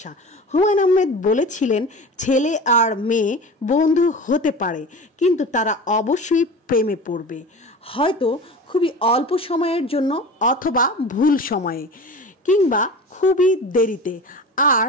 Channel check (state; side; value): normal; both; correlation 0.34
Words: হুমায়ুন আহমেদ বলেছিলেন ছেলে আর মেয়ে বন্ধু হতে পারে, কিন্তু তারা অবশ্যই প্রেমে পড়বে, হয়তো খুবই অল্প সময়ের জন্য অথবা ভুল সময়ে, কিংবা খুবই দেরিতে, আর